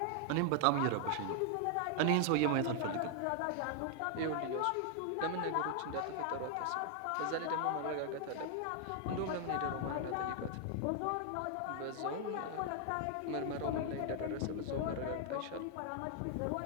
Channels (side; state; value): both; different; correlation 0.00